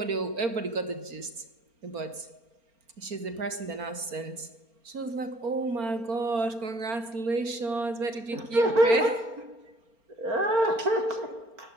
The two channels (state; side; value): late; left; 4.4 ms